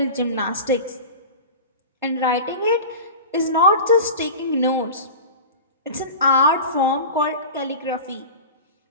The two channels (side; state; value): both; inverted; correlation -0.33